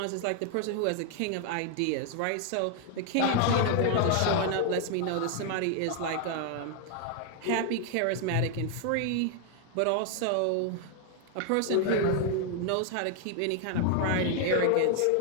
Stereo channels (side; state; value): both; different; correlation 0.00